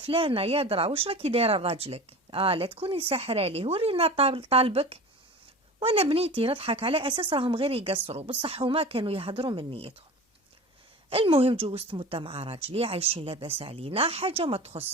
يا درا واش راكي دايره لراجلك، لا تكوني ساحره ليه ورينا طالبك. وانا بنيتي نضحك على اساس راهم غير يقصروا، بصح هما كانوا يهضروا من نيتهم. المهم جوزت مده مع راجلي عايشين لاباس علينا، حاجه ما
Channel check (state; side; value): normal; both; correlation 0.35